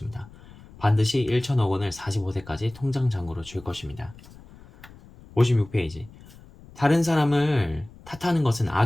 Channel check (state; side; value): noise; left; rumble, 22 dB below the sound